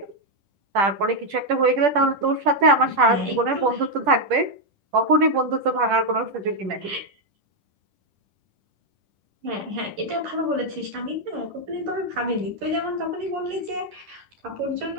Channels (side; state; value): left; late; 10 ms